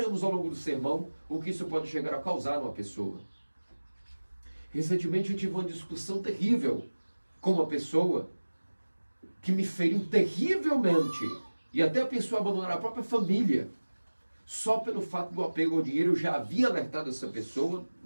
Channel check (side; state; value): both; inverted; correlation -1.00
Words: ao longo do sermão o que isso pode chegar a causar numa pessoa. Recentemente eu tive uma discussão terrível com uma pessoa que me feriu terrivelmente e até pensou em abandonar a própria família. Só pelo fato do apego ao dinheiro, eu já havia alertado essa pessoa,